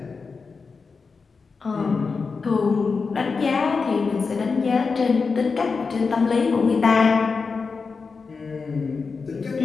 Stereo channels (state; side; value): quieter; right; 4.8 dB